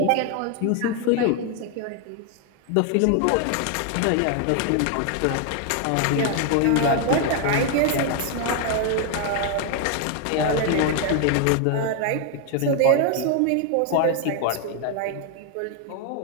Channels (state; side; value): different; both; correlation 0.00